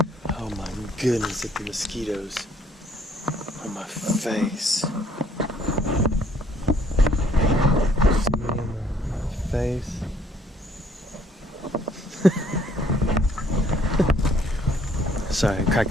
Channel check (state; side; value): normal; both; correlation 0.63